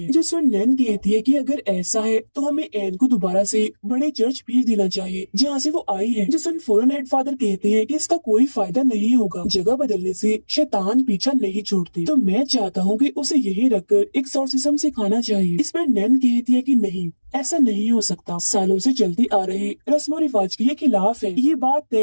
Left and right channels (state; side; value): inverted; both; correlation -1.00